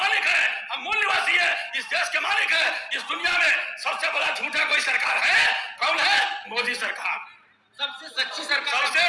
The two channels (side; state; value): both; identical; correlation 1.00